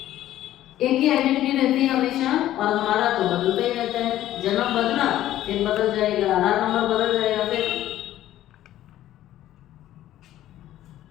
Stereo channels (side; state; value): right; quieter; 13.3 dB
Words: एक ही आइडेंटिटी रहती है हमेशा, और हमारा तो बदलता ही रहता है। जन्म बदला फिर बदल जाएगा, आधार नंबर बदल जाएगा फिर।